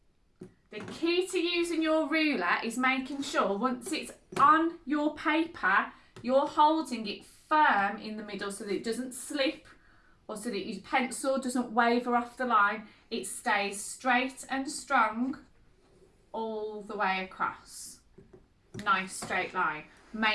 The key to using your ruler is making sure once it's on your paper, you're holding it firm in the middle so that it doesn't slip or so that your pencil doesn't waver off the line. It stays straight and strong all the way across. Nice straight line.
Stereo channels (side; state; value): both; identical; correlation 1.00